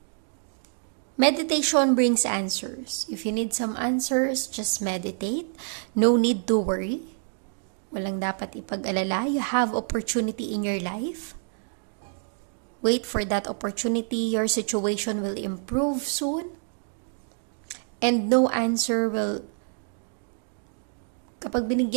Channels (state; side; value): silent; left; 60 dB below the other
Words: Meditation brings answers. If you need some answers, just meditate. No need to worry. Walang dapat ipag-alala. You have opportunity in your life. Wait for that opportunity. Your situation will improve soon. And no answer will... Kapag